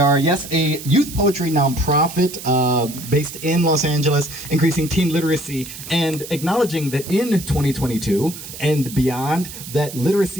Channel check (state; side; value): noise; right; hiss, 12 dB below the sound